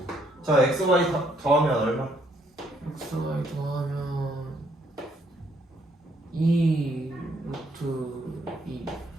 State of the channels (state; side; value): normal; both; correlation 0.69